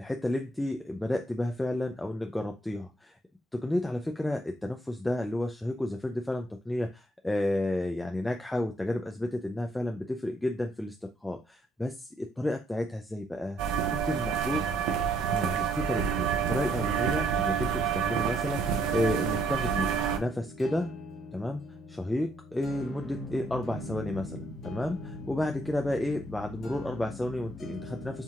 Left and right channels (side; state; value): both; normal; correlation 0.71